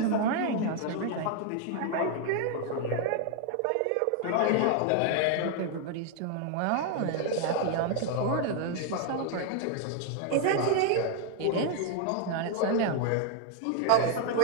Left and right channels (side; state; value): both; different; correlation 0.00